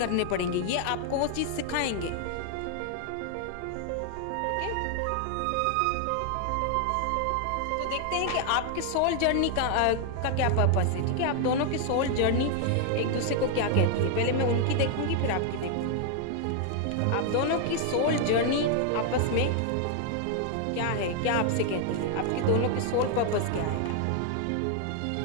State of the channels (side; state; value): both; different; correlation 0.00